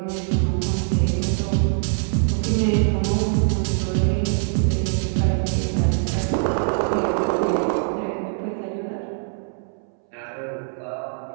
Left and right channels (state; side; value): silent; left; 63 dB below the other